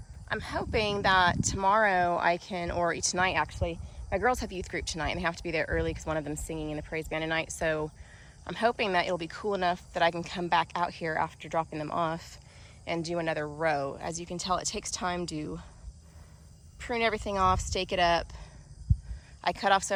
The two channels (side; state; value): both; identical; correlation 1.00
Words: I'm hoping that tomorrow I can, or tonight actually, my girls have youth group tonight and they have to be there early because one of them's singing in the praise band tonight. So I'm hoping that it'll be cool enough that I can come back out here after dropping them off and do another row. As you can tell, it takes time to prune everything off, stake it up. I cut off